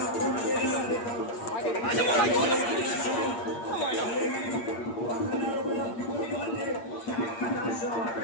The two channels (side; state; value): right; late; 8.7 ms